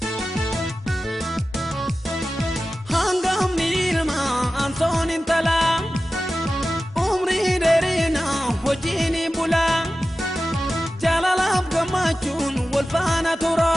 Anton intala umri derina hojini bula jalalaf gamachun walfana tura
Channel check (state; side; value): normal; both; correlation 0.94